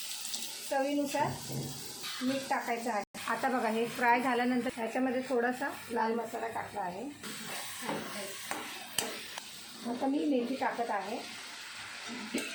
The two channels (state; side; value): identical; both; correlation 1.00